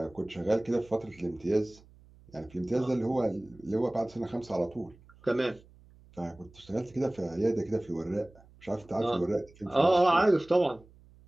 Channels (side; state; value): right; noise; hum, 25 dB below the sound